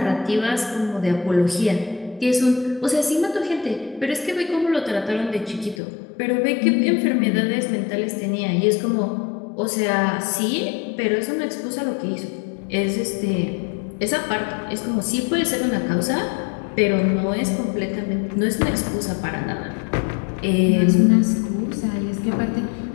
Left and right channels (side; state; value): right; drops out; at 5.8 s